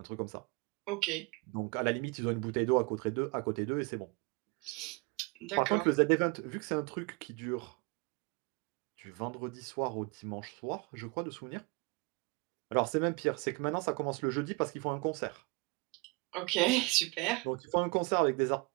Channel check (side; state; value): left; quieter; 28.5 dB